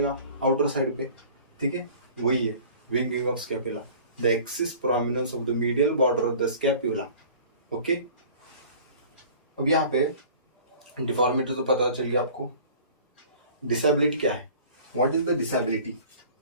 आउटर साइड पे. ठीक है, वही है winging of scapula, the excess prominence of the medial border of the scapula. Okay, अब यहाँ पे डिफॉर्मिटी तो पता चल गया आपको. डिसेबिलिटी क्या है, what is the disability.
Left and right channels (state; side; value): inverted; both; correlation -0.47